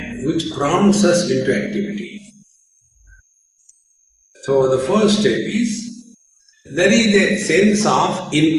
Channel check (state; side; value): identical; both; correlation 1.00